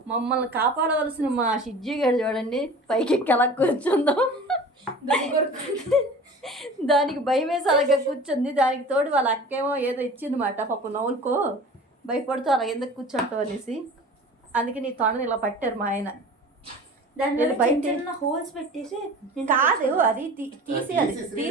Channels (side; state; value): both; normal; correlation 0.40